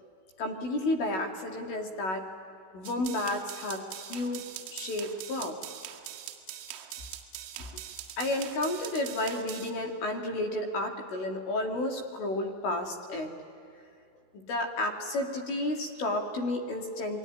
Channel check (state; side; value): late; right; 16 ms